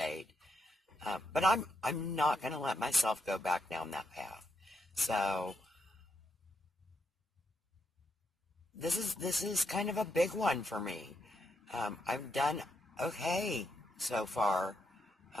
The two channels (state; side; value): normal; both; correlation 0.80